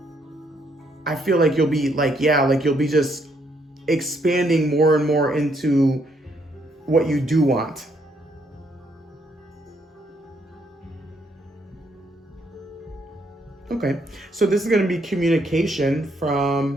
you'll be like, you'll be just expanding more and more into what you do want. Okay, so this is going to be communication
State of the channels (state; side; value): normal; both; correlation 0.72